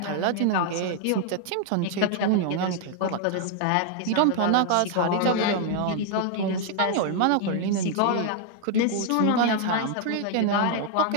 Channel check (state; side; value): different; both; correlation 0.00